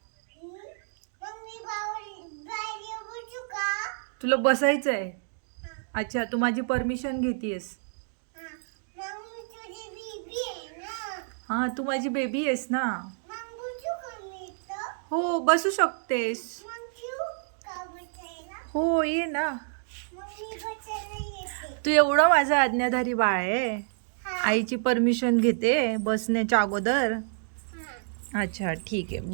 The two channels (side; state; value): left; silent; digital silence